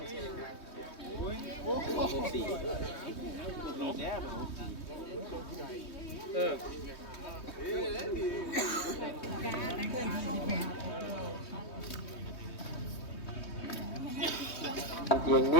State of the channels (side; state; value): right; late; 3.2 ms